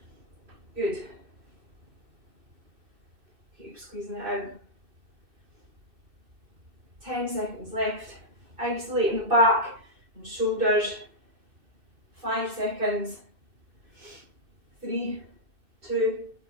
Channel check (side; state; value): left; late; 2.6 ms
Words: Good. Keep squeezing it out. 10 seconds left. Isolating the back and shoulders. 5 seconds. 3, 2,